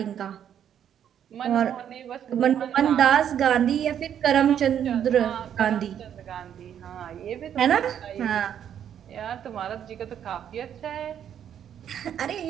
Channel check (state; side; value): quieter; left; 9.4 dB